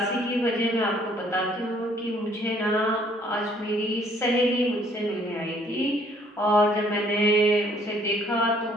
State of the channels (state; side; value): normal; both; correlation 0.62